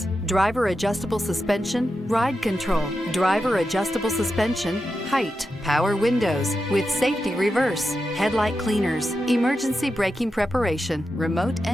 driver adjustable suspension, ride control, driver adjustable suspension, height, power windows with safety reverse, headlight cleaners, emergency braking preparation, remote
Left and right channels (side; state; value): both; normal; correlation 0.89